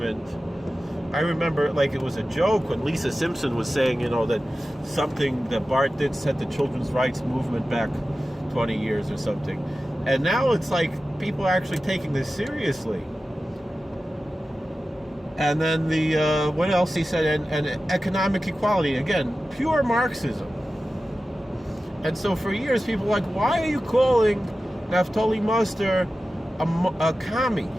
I remember like it was a joke when Lisa Simpson was saying, that something that Bart did set the children's rights movement back 20 years or something. And now it's like people are actually taking this seriously. And then the, what else he said, and economic equality, again, pure Marxism. And so for years, people were like, why are you calling Naftali Muster a commie?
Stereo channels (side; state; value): both; normal; correlation 0.94